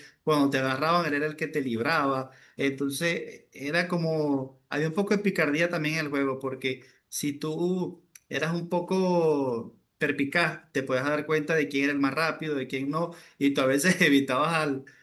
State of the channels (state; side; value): identical; both; correlation 1.00